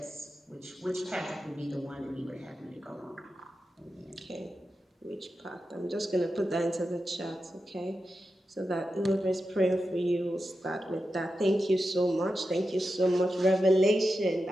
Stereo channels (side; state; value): both; normal; correlation 0.90